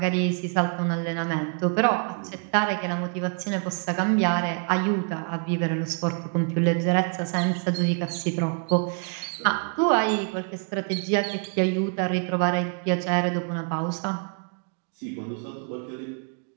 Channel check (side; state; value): left; quieter; 40.0 dB